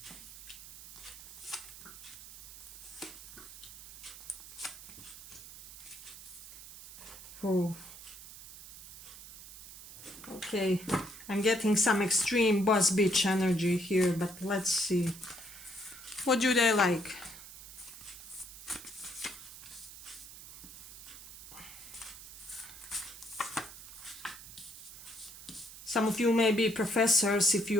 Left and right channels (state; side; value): noise; right; hiss, 15 dB below the sound